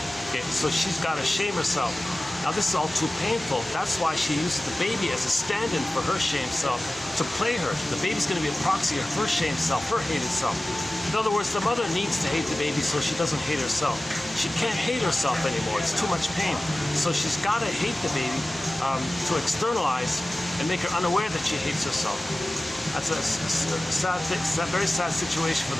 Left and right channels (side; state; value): both; normal; correlation 0.96